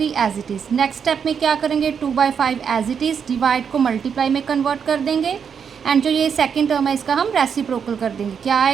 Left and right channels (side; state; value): left; quieter; 7.0 dB